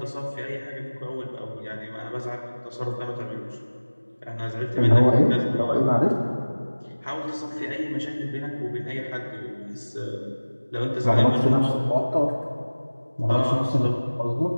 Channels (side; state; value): both; inverted; correlation -1.00